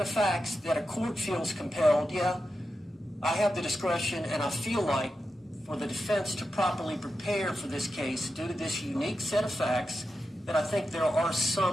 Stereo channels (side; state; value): both; normal; correlation 0.90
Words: of facts, that a court feels compelled, I have the discretion and I feel like for the defense to properly prepare for this case due to this unique set of facts, that I think there are